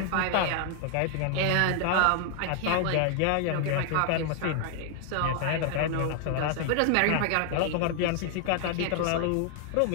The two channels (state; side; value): different; both; correlation 0.00